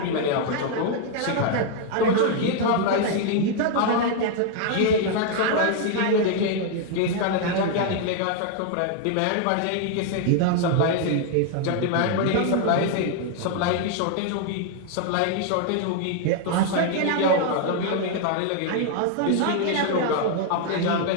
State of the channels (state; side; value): different; both; correlation 0.00